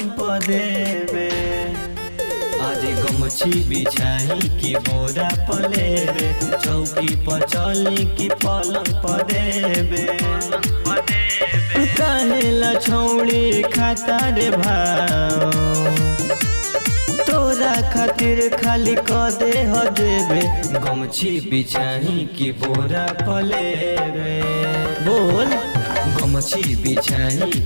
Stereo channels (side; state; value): both; inverted; correlation -1.00